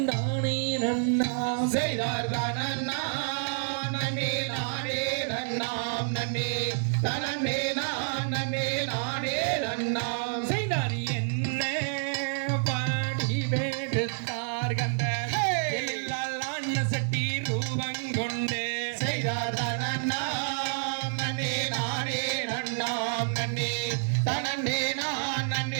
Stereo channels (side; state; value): left; silent; digital silence